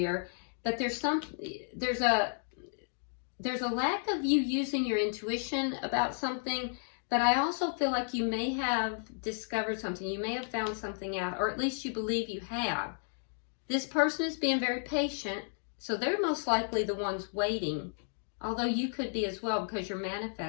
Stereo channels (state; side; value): silent; right; digital silence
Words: but there's a lack of you using your intuition about something, but I also feel like you may have discovered something. You may have found something out, or at least you believe you have. This person is being very patient, so they're most likely the ones waiting, although you could be as well because you're